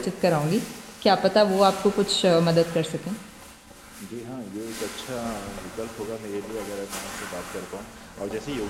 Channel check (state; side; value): identical; both; correlation 1.00